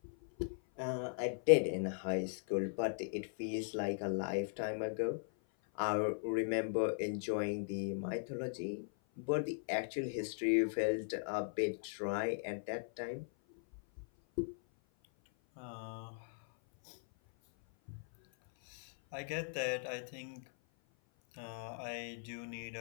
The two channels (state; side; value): silent; right; 52 dB below the other